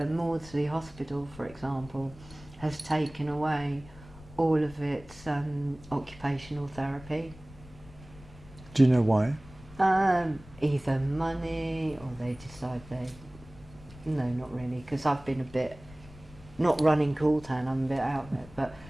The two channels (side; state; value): left; noise; rumble, 20 dB below the sound